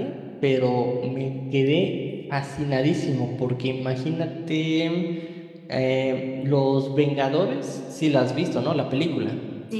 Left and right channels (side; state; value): both; identical; correlation 1.00